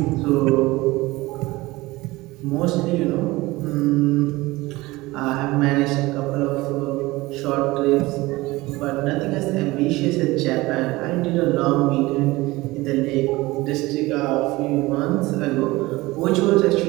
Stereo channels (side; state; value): left; quieter; 20.3 dB